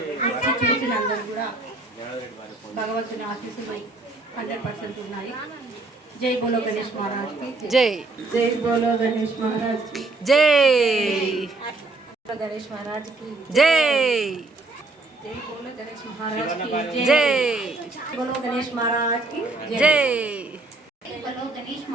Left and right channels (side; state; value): left; quieter; 3.2 dB